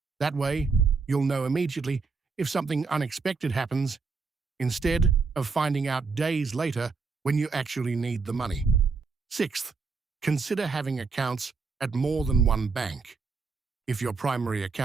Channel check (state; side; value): quieter; left; 4.6 dB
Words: That way, you'll know immediately if something unexpected happens, instead of finding out days later when you actually need the money. Sixth, consider having accounts at more than one bank. If your primary